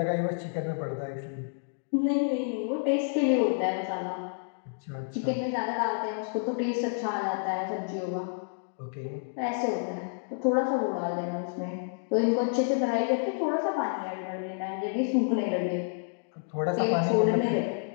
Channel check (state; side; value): silent; right; digital silence